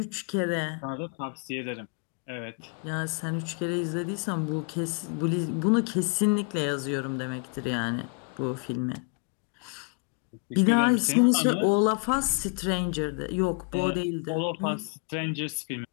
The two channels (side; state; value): right; quieter; 38.5 dB